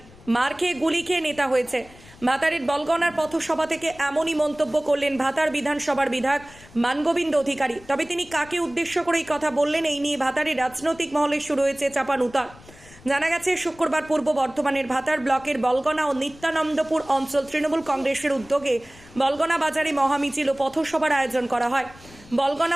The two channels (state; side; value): noise; left; rumble, 22 dB below the sound